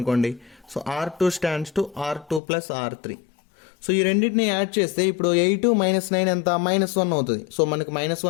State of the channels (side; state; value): right; drops out; at 2.4 s